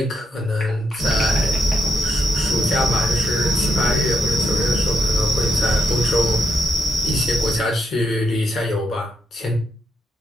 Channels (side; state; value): both; normal; correlation 0.79